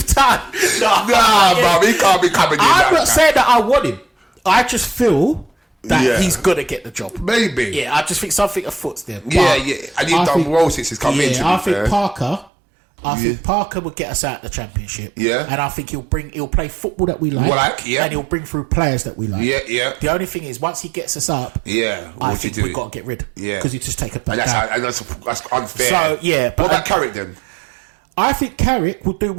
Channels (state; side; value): drops out; left; at 12.5 s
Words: Town. Nah, bruv, he can't be coming in. I'm not saying that I want him. I just feel that he's going to get the job. Maybe. Yeah, I just think something afoot's there. And he's done well since he's come in. I think Parker. I think Parker would get us out of the Championship. Yeah. And I think he'll play football that we like. And he'll bring through players that we like. Yeah. The only thing is, once he gets us up, I think we've got to get rid. Yeah. Because he just take a back down. And that's unfair. So, But what about Carrick then? I think Carrick will do